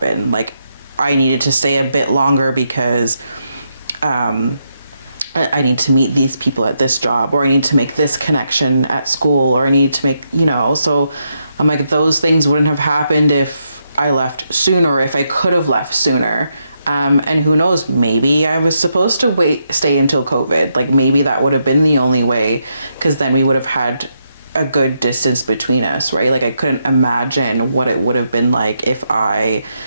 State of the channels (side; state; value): both; inverted; correlation -0.81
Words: I needed to stay a bit longer because I need to meet these people at this job, or I need to make this connection at school, or I need to make, so I'm those things wouldn't have happened if I left sooner, if I could have left sooner. And who knows, maybe I was supposed to stay until COVID. Maybe that would have been the only way, because then we would have had a good distance between us, right? I couldn't imagine what it would have been like if I,